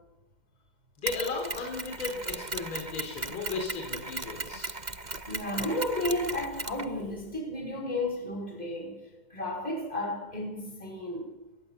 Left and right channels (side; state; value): left; late; 2.1 ms